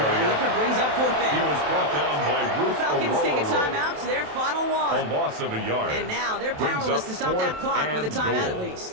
And the effort brings up fourth He down. was brought down by The Ruth Falcons take a Aurora. timeout to their final A one. loss of a yard. And now they're Brings powerless up to stop that fourth clock with a and timeout goal. at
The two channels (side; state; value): left; late; 27 ms